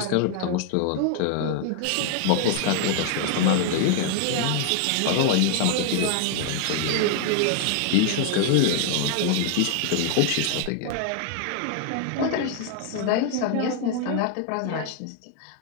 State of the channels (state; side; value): different; both; correlation 0.00